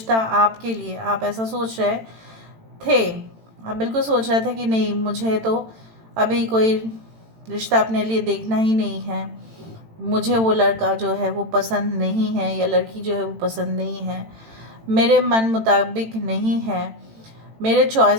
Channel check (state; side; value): late; left; 18 ms